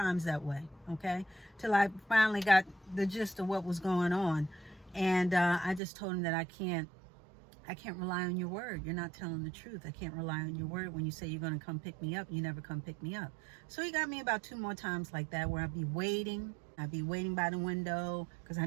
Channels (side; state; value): left; drops out; at 5.8 s